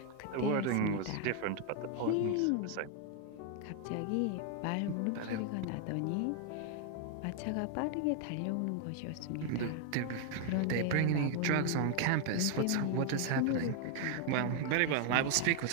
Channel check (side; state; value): both; different; correlation 0.00